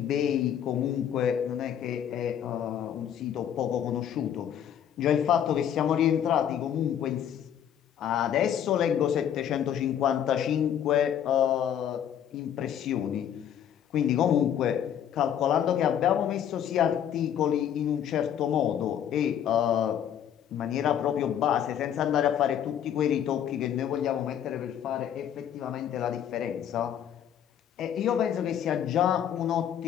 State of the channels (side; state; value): right; quieter; 9.6 dB